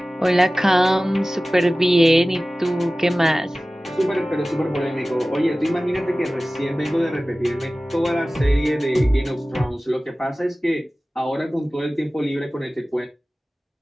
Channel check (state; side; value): normal; both; correlation 0.97